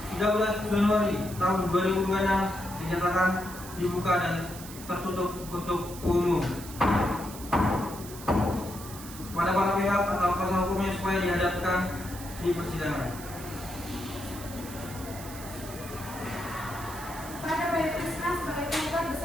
13 Januari tahun 2026 dinyatakan dibuka dan tertutup untuk umum. Kepada para pihak atau kuasa hukumnya supaya dihadapkan di persidangan. Pada Bayu Krisna sebagai penggugat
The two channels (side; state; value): right; noise; hiss, 14 dB below the sound